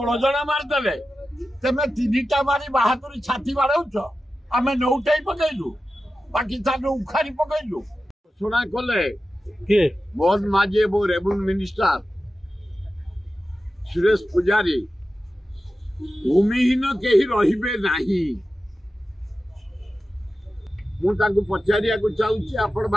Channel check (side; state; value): both; normal; correlation 0.93